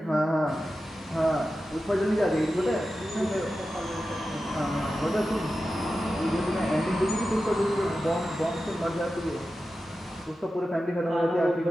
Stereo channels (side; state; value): both; normal; correlation 0.92